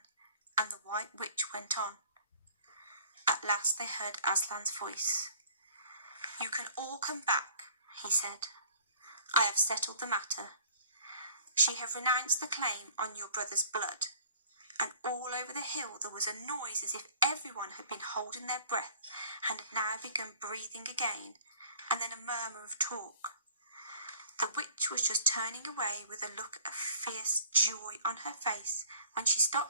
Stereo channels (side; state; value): both; inverted; correlation -0.52